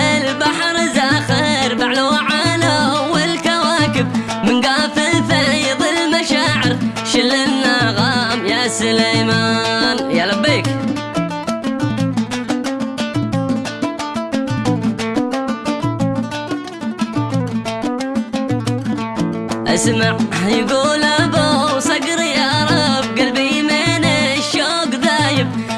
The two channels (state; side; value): identical; both; correlation 1.00